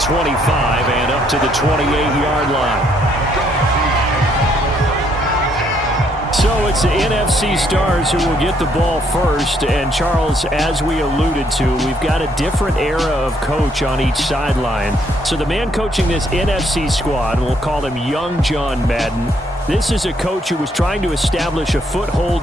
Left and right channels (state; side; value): normal; both; correlation 0.70